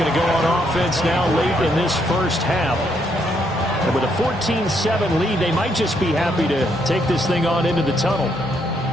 to go on offense now late in this first half. And with a 14-7 lead, they might just be happy to take this thing on into the tunnel.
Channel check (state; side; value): normal; both; correlation 0.74